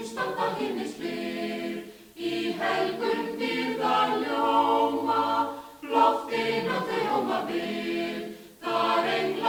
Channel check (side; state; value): both; identical; correlation 1.00